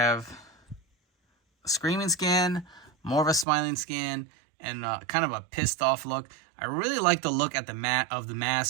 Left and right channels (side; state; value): left; drops out; at 3.5 s